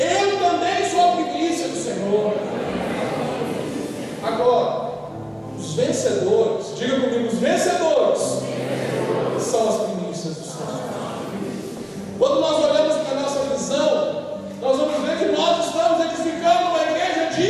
também sou a primícia do Senhor. Agora, os vencedores, diga comigo, os vencedores são as primícias do Senhor. Quando nós olhamos para a nossa visão, nós vamos ver que nós estamos edificando uma igreja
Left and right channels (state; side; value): identical; both; correlation 1.00